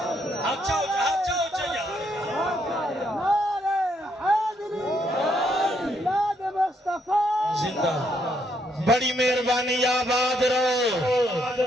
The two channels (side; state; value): both; normal; correlation 0.74